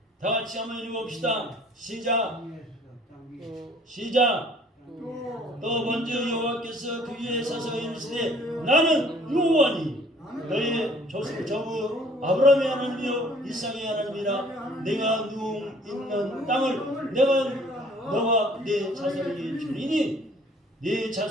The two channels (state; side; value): normal; both; correlation 0.56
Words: 다 같이 한번 읽어봅시다. 시작. 또 먼저 여호와께서 그 위에 서서 이르시되 나는 여호와니 너의 조부 아브라함의 하나님이요 이삭의 하나님이라 내가 누움 있는 땅을 내가 너와 네 자손에게 주리니 네